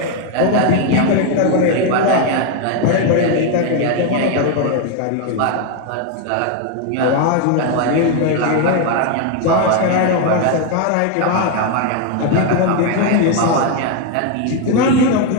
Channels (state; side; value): different; both; correlation 0.01